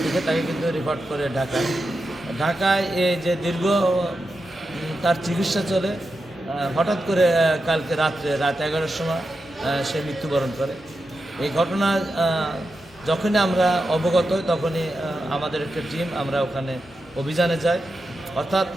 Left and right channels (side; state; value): both; normal; correlation 0.89